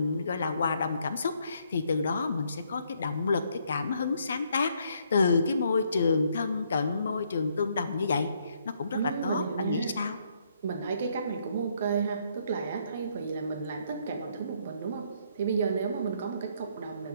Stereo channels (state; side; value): inverted; both; correlation -0.70